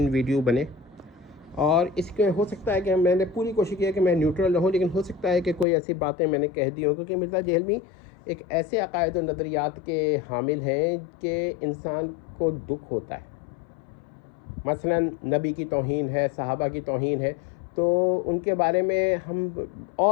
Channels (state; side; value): drops out; right; at 5.7 s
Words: ویڈیو بنے، اور اس کے ہو سکتا ہے کہ میں نے پوری کوشش کی ہے کہ میں نیوٹرل رہوں، لیکن ہو سکتا ہے کہ کوئی ایسی باتیں میں نے کہہ دی ہوں، کیونکہ مرزا جہلمی ایک ایسے عقائد و نظریات کے حامل ہیں کہ انسان کو دکھ ہوتا ہے۔ مثلا نبی کی توہین ہے، صحابہ کی توہین ہے، تو ان کے بارے میں ہم